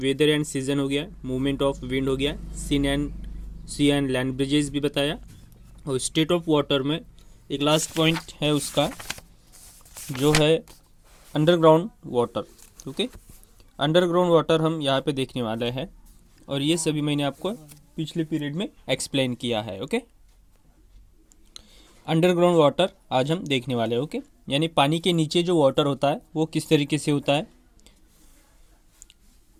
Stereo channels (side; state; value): both; identical; correlation 1.00